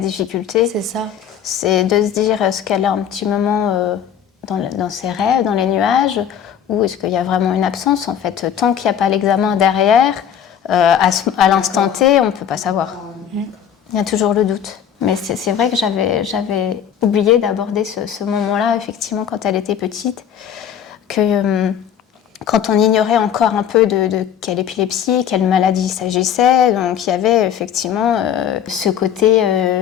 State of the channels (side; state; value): right; quieter; 8.9 dB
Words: C'est ça. C'est de se dire, est-ce qu'elle a un petit moment dans ses rêves, dans les nuages, ou est-ce qu'il y a vraiment une absence, en fait. Tant qu'il n'y a pas l'examen derrière, à l'instant T, on ne peut pas savoir. Il y a toujours le doute. Mais c'est vrai que j'avais oublié d'aborder ce moment-là, effectivement, quand elle était petite, que quand on ignorait encore un peu de quelle épilepsie, quelle maladie il s'agissait, donc il y avait effectivement ce côté